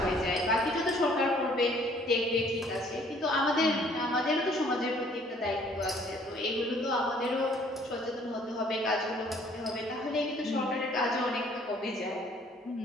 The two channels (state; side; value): normal; both; correlation 0.59